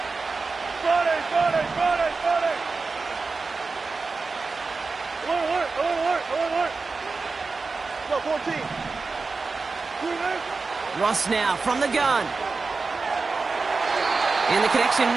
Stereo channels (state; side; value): quieter; left; 4.2 dB